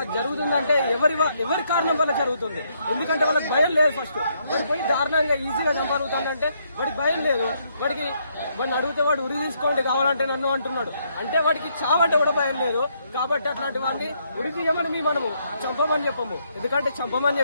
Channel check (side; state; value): both; inverted; correlation -0.73